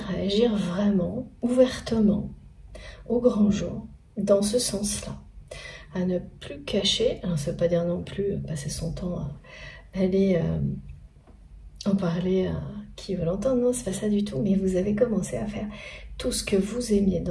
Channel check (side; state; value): both; identical; correlation 1.00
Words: à agir vraiment, ouvertement, au grand jour, dans ce sens-là, à ne plus cacher, alors ça ne veut pas dire non plus passer son temps à aller en parler à qui veut l'entendre, non, c'est pas ça du tout, mais vous avez commencé à faire tout ce que vous aimiez